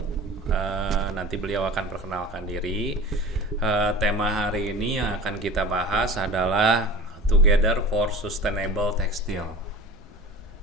Nanti beliau akan perkenalkan diri. Tema hari ini yang akan kita bahas adalah Together for Sustainable Textile.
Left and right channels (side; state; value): both; normal; correlation 0.37